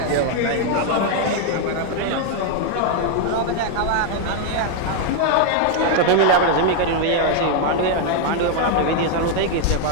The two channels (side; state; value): both; different; correlation 0.00